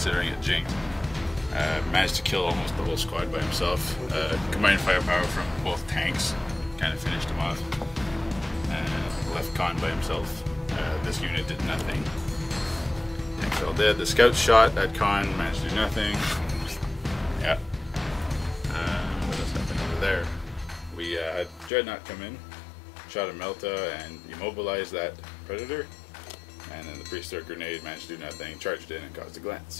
it jinked. Managed to kill almost the whole squad by himself. Combined firepower from both tanks kind of finished him off. Left Con by himself. This unit did nothing. Tanks all dead. The scouts shot at Con, managed to do nothing. Yeah. What else happened over there? We had Dreadnought come in, shot a Melta and immobilized that Predator. And then the Priest-Thrower Grenade managed to do nothing, charged in and caused a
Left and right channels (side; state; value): right; drops out; at 21.7 s